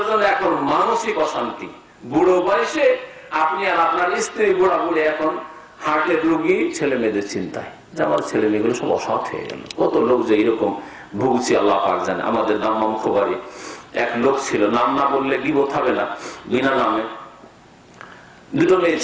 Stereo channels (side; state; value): both; identical; correlation 1.00